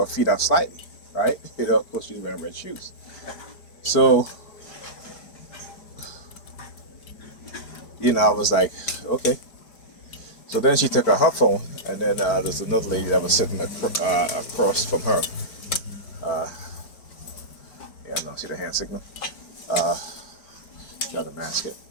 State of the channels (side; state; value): right; late; 5.0 ms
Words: feet out slightly, right? Of course she's wearing red shoes. So, I was like, okay. So then she took out her phone, and then there's another lady that was sitting across from her. No, see the hand signal? Trying to mask it,